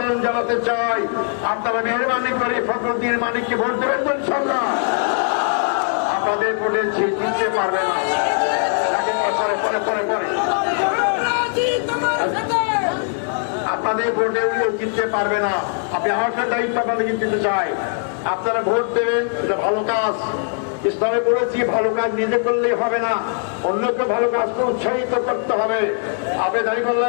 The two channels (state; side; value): silent; right; 60 dB below the other